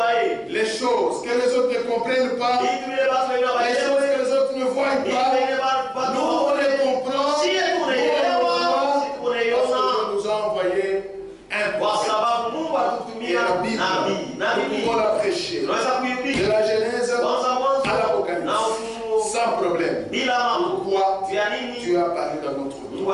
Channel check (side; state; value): both; identical; correlation 1.00